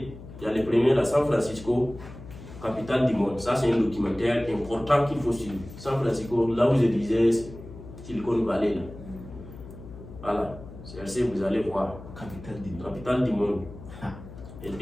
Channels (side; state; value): left; noise; hum, 15 dB below the sound